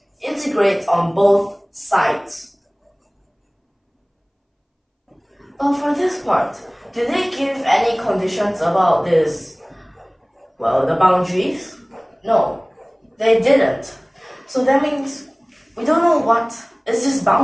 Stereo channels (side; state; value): both; identical; correlation 1.00